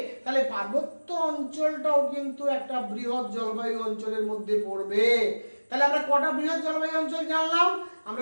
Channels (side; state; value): both; inverted; correlation -1.00